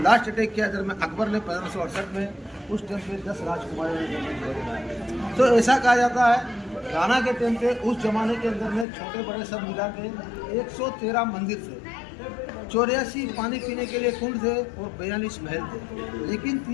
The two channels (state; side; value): drops out; right; at 8.8 s